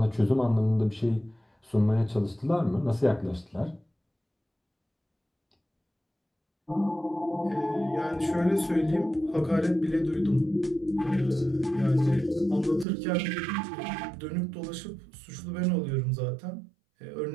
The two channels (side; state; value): left; drops out; at 12.9 s